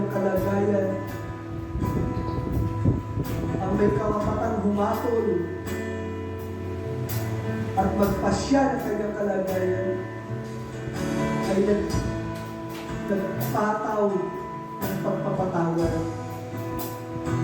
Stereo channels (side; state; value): both; identical; correlation 1.00